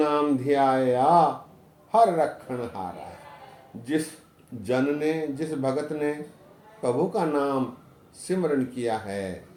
ध्याया, हर रखण हारा। जिस जन ने, जिस भगत ने प्रभु का नाम सिमरन किया है,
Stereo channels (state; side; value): identical; both; correlation 1.00